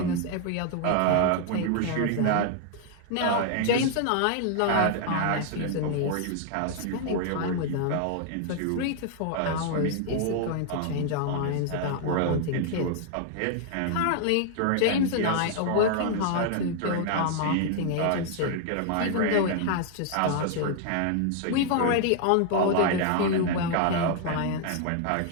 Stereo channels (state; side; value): different; both; correlation 0.00